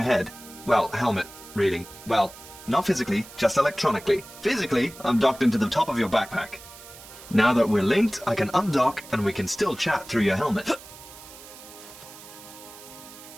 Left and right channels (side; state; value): right; noise; hiss, 18 dB below the sound